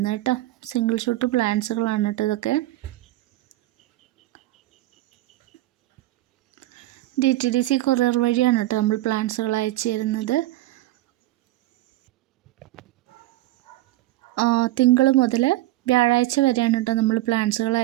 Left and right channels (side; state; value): left; quieter; 16.6 dB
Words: കേട്ടോ. സിംഗിൾ ഷൂട്ട് പ്ലാന്റ്സുകളാണ് കേട്ടോ ഇതൊക്കെ. DTDC കൊറിയർ വഴിയാണ് കേട്ടോ നമ്മൾ പ്ലാന്റ്സുകൾ അയച്ചു തരുന്നത്. തിങ്കൾ മുതൽ വ്യാഴാഴ്ച വരെയാണ് കേട്ടോ നമ്മൾ പ്ലാന്റ്സുകൾ